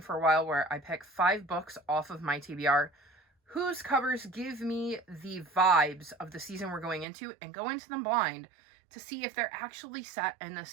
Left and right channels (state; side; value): drops out; left; at 7.1 s